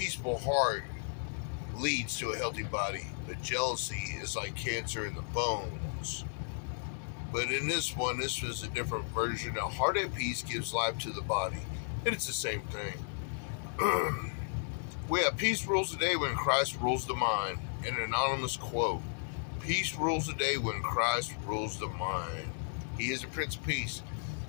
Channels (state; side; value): silent; right; digital silence